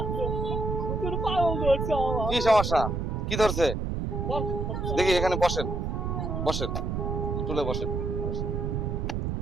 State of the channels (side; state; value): right; noise; rumble, 1 dB below the sound